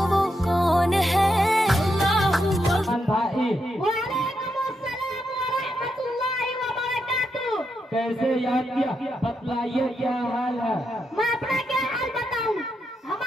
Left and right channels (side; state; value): both; normal; correlation 0.83